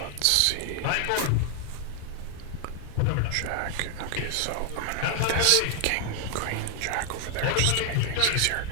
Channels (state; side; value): different; both; correlation 0.00